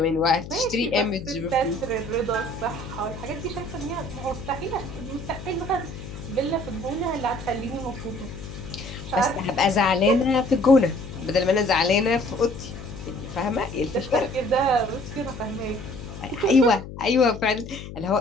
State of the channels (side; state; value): left; noise; hum, 11 dB below the sound